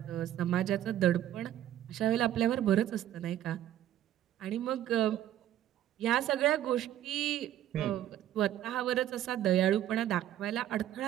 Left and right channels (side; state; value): left; quieter; 12.0 dB